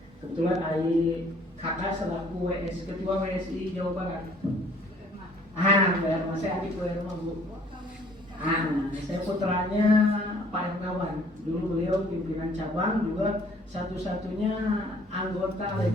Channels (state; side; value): normal; both; correlation 0.58